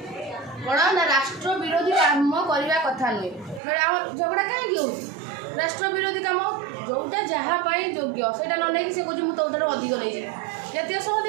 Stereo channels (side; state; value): left; drops out; at 3.6 s